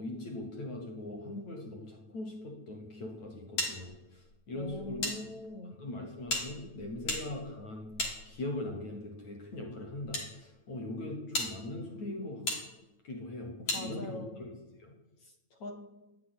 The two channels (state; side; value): late; right; 9.1 ms